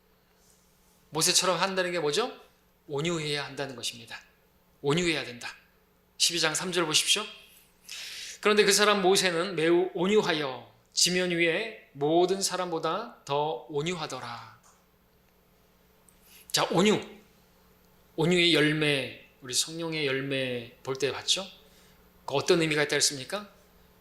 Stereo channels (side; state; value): both; identical; correlation 1.00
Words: 모세처럼 한다는 게 뭐죠? 온유해야 한다는 것입니다. 온유해야 된다. 12장 3절 보십시오. 그런데 그 사람 모세는 매우 온유하여 지면 위에 모든 사람보다 더 온유하더라. 자, 온유의 열매, 우리 성령의 열매 볼 때 봤죠? 어떤 의미가 있다 했습니까?